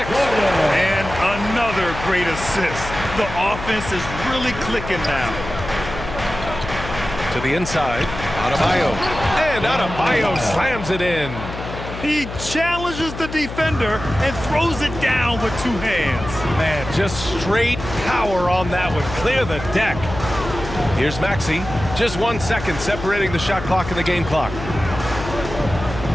And another great assist. The offense is really clicking now. To the inside. Adebayo. And Adebayo slams it in. He challenges the defender and throws it down with 2 hands. Man, just straight power on that one. Clear the deck. Here's Maxey. Just 1 second separating the shot clock and the game clock.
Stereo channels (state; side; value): noise; left; hum, 9 dB below the sound